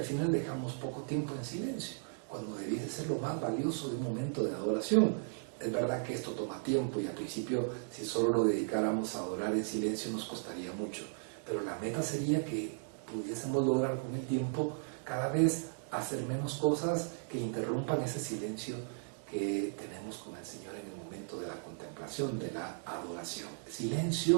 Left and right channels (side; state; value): left; silent; digital silence